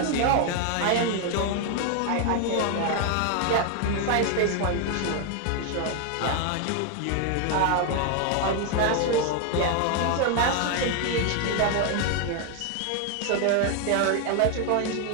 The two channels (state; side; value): different; both; correlation 0.01